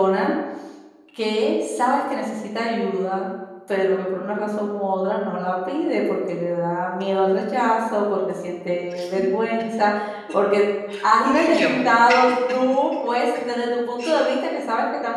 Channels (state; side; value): identical; both; correlation 1.00